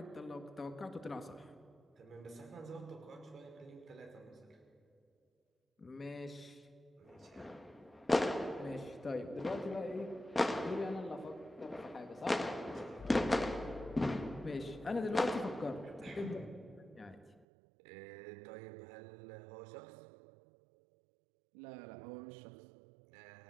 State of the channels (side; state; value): left; drops out; at 17.4 s